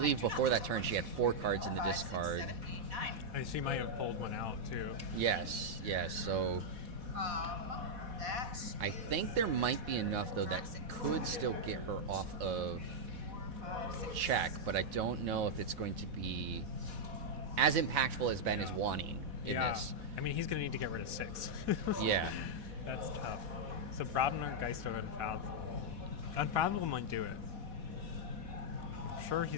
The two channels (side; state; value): left; late; 4.1 ms